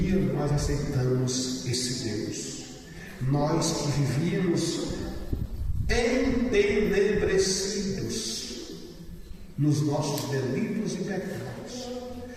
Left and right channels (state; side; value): identical; both; correlation 1.00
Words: nós aceitamos esse Deus. Nós que vivíamos entenebrecidos nos nossos delitos e pecados,